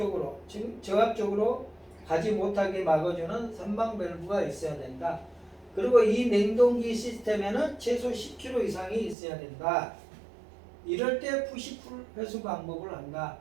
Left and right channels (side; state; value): left; drops out; at 9.2 s